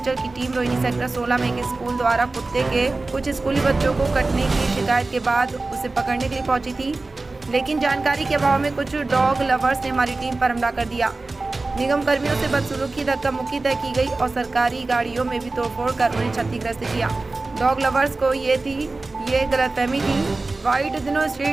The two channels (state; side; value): quieter; left; 3.4 dB